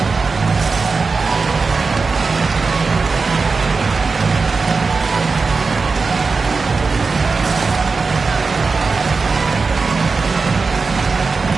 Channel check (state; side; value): quieter; left; 4.4 dB